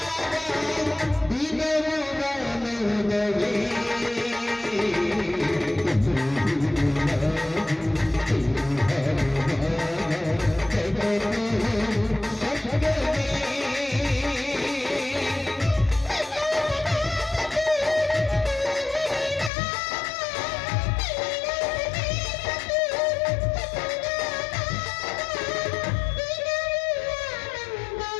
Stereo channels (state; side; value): drops out; right; at 19.5 s